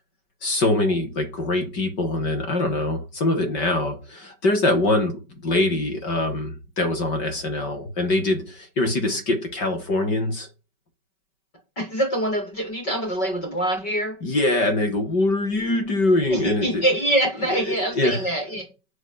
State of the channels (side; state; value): right; late; 5.2 ms